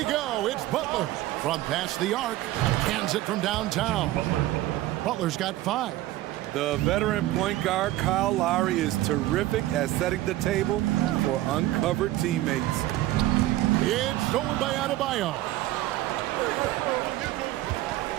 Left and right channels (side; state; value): left; quieter; 15.9 dB